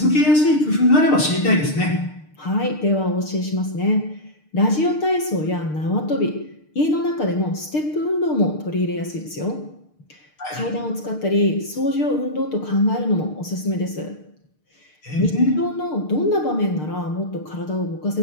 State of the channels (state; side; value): late; right; 6.6 ms